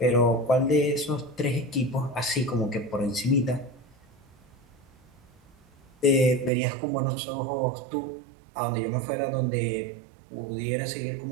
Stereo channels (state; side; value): drops out; left; at 6.5 s